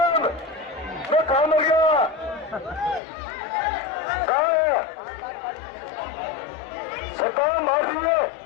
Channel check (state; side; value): drops out; right; at 3.0 s